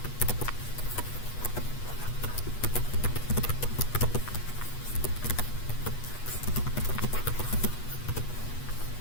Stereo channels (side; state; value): right; late; 8.2 ms